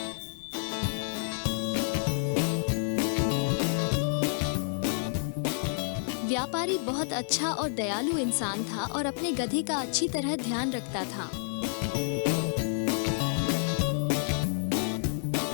व्यापारी बहुत अच्छा और दयालु इंसान था और अपने गधे का अच्छी तरह ध्यान रखता था।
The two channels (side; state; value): right; silent; digital silence